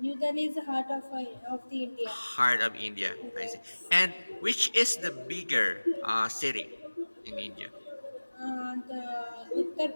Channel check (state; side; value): inverted; both; correlation -1.00